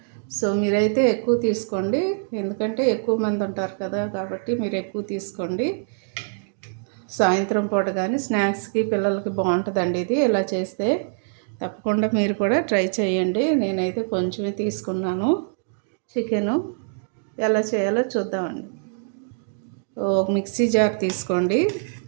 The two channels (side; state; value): left; silent; digital silence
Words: సో మీరైతే ఎక్కువ తీసుకోండి, ఎందుకంటే ఎక్కువ మంది ఉంటారు కదా, కాబట్టి మీరు ఎక్కువ తీసుకోండి. సాయంత్రం పూట కానీ స్నాక్స్కి పిల్లలకి బాగుంటుందండి ఇది. ఇలా చేస్తే తప్పకుండా మీరు కూడా ట్రై చేయండి. నేనైతే కొంచెమే తీసుకున్నాను చికెను. ఎలా చేయాలో చూద్దామండి. ఒక మిక్సీ జార్ తీసుకోండి,